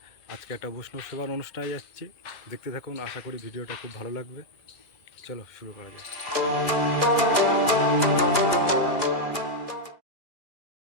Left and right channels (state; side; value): late; right; 2.2 ms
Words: আজকে একটা বৈষ্ণব সেবার অনুষ্ঠানে যাচ্ছি, দেখতে থাকুন। আশা করি ভিডিওটা খুব ভালো লাগবে। চলো শুরু করা যাক।